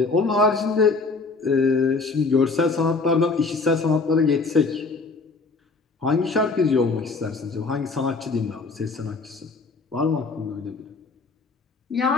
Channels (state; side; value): quieter; right; 4.0 dB